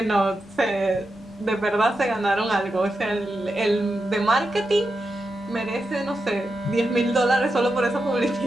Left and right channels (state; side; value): normal; both; correlation 0.88